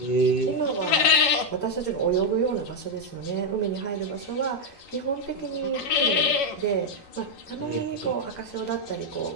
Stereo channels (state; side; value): late; right; 11 ms